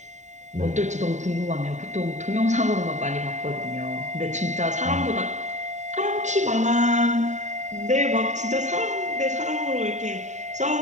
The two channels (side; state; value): left; late; 0.34 ms